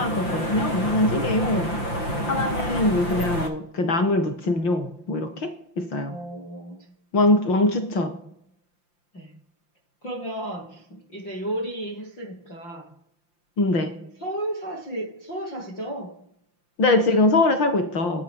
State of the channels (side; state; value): right; late; 5.8 ms